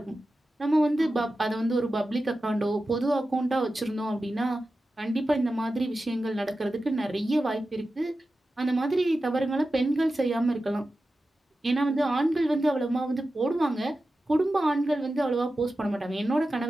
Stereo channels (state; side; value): normal; both; correlation 0.93